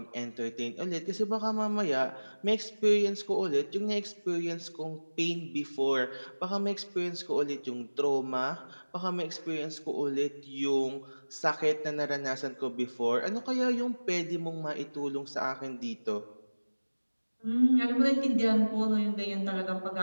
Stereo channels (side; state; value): both; inverted; correlation -1.00